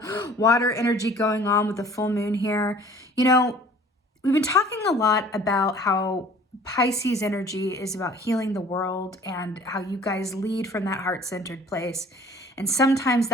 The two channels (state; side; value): normal; both; correlation 0.50